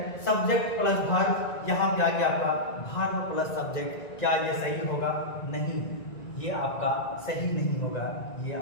सब्जेक्ट प्लस वर्ब, यहाँ पे आ गया आपका वर्ब प्लस सब्जेक्ट। क्या ये सही होगा? नहीं, ये आपका सही नहीं होगा, ये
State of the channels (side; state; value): right; late; 1.9 ms